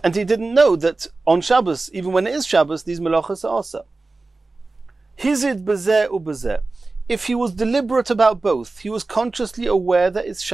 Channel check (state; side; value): quieter; left; 3.5 dB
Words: and he didn't know that on Shabbos, even when it is Shabbos, these melachos are also. Hizid bezeh ubezeh. If he was deliberate about both, he was consciously aware that it's